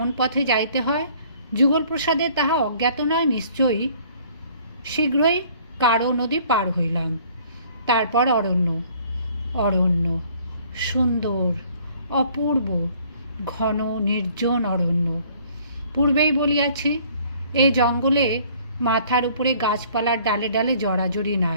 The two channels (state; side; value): inverted; both; correlation -0.56